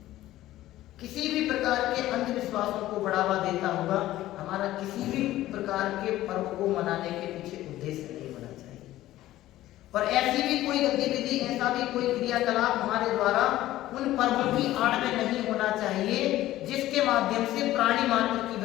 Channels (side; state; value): right; quieter; 15.0 dB